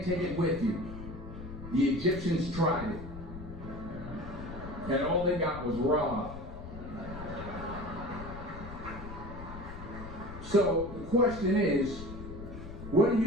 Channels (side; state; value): left; noise; rumble, 11 dB below the sound